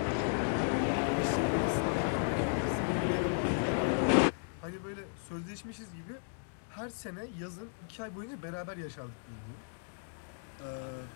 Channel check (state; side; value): silent; right; digital silence